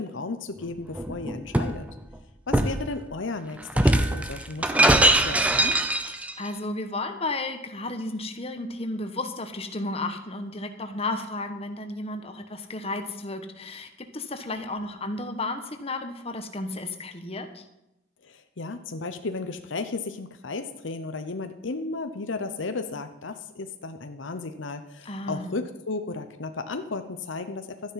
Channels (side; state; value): both; normal; correlation 0.39